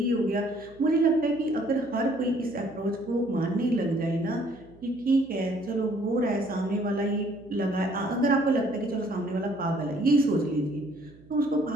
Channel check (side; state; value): right; noise; hum, 25 dB below the sound